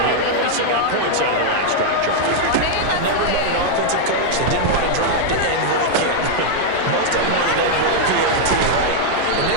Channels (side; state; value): both; different; correlation 0.00